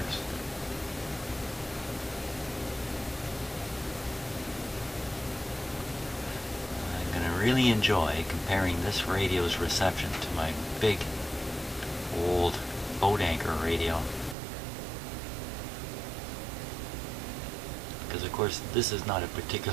I'm going to really enjoy comparing this radio's reception to my big old boat anchor radio. Because of course this is not a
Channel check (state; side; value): drops out; left; at 14.4 s